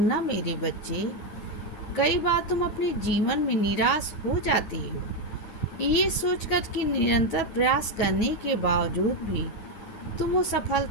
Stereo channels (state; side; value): late; right; 9.1 ms